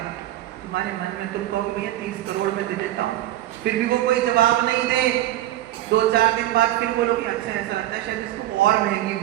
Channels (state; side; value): quieter; left; 14.0 dB